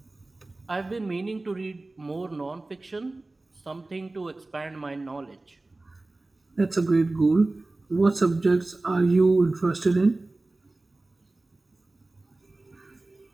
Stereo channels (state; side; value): quieter; left; 3.0 dB